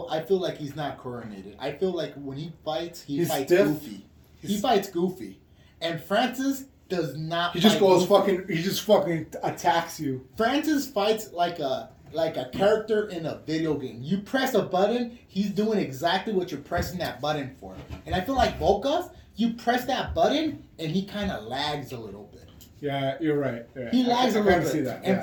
I feel like he's not coordinated. I feel like when he fights, He's fights stiff. goofy. He fights goofy. And Francis does not He just fight goes goofy. he just fucking attacks you. Francis fights like a character in a video game. You press a button, he's doing exactly what you're pressing that button for. And I feel like Volkov, you press that button and he kind of lags a little bit. Yeah, you're right. Yeah. He lags I a little kinda bit. see that. And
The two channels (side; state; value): both; identical; correlation 1.00